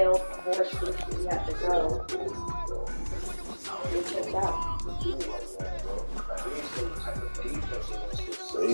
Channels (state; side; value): inverted; both; correlation -1.00